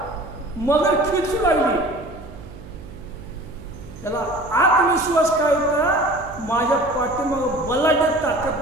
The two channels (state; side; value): noise; right; hum, 16 dB below the sound